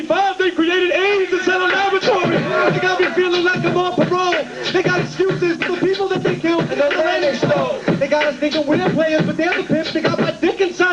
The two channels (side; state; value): both; identical; correlation 1.00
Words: they created AIDS and set a laboratory. They got me feeling like I'm on parole. They got excuses for the people that they killed and the land they stole. They got us thinking we're players, but they're the pimps. They got my dick